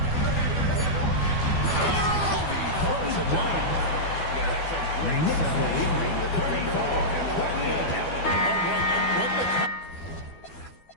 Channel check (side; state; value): right; late; 12 ms